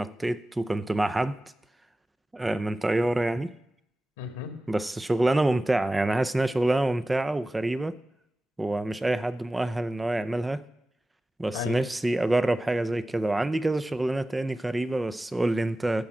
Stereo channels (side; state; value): both; normal; correlation 0.96